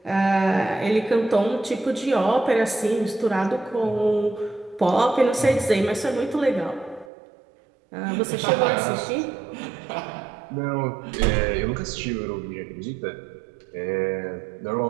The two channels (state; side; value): drops out; left; at 7.1 s